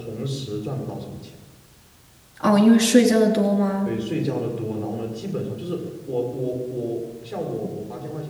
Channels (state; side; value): identical; both; correlation 1.00